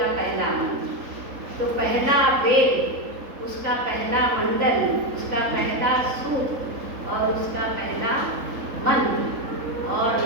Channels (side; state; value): left; late; 3.8 ms